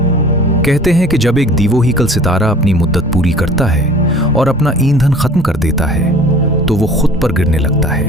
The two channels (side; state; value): both; normal; correlation 0.47